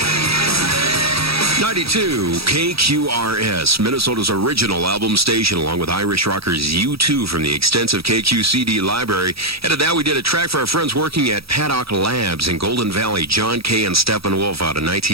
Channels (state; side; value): late; left; 0.76 ms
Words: 92 KQRS, Minnesota's original album station, along with Irish rockers U2 from the extensive KQ CD library. And at that, we did a track for our friends working at Paddock Labs in Golden Valley, John Kay and Steppenwolf out of